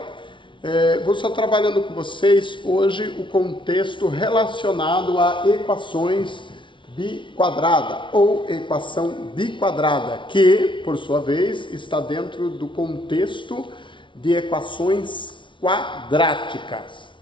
Vou estar trabalhando com vocês hoje o contexto relacionado a equações biquadrada ou equação biquadrada, que, por sua vez, está dentro do contexto de equações quadráticas.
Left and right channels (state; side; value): late; right; 0.24 ms